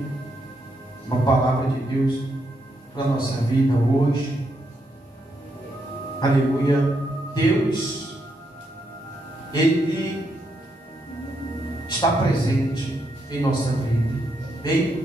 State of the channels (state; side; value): normal; both; correlation 0.79